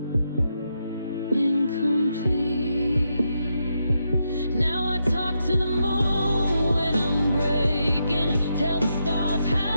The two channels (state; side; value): inverted; both; correlation -0.82